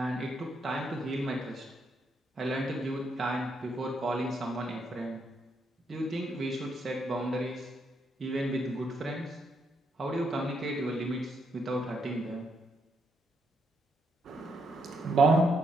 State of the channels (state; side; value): normal; both; correlation 0.77